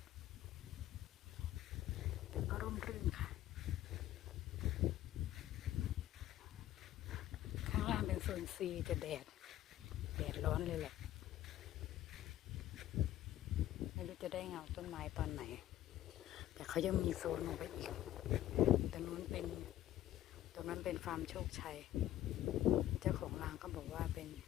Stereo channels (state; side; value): quieter; right; 13.4 dB